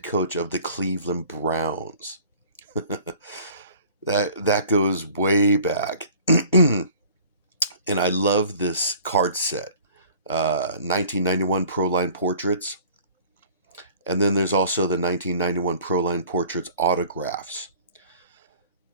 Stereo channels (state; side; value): inverted; both; correlation -0.49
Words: coach of the Cleveland Browns. that goes way back. And I love this card set. 1991 Proline portraits. And then there's also the 1991 Proline portraits autographs.